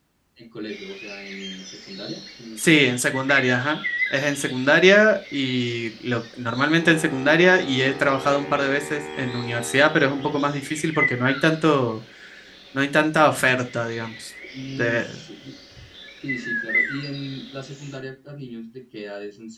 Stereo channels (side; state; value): both; identical; correlation 1.00